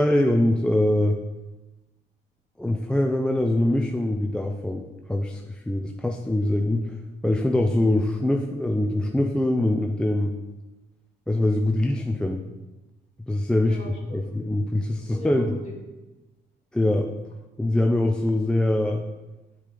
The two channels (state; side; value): normal; both; correlation 0.93